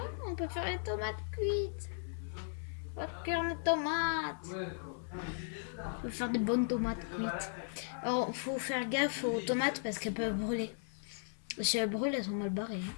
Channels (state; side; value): silent; right; 53 dB below the other